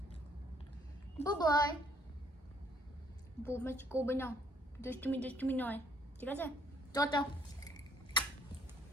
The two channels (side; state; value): both; normal; correlation 0.65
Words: বাই বৌমাছি করবে না, দুষ্টুমি নয়, ঠিক আছে? টাটা।